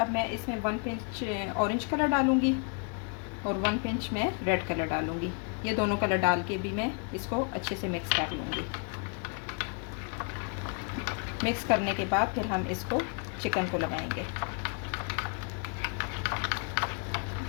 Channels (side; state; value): right; quieter; 39.3 dB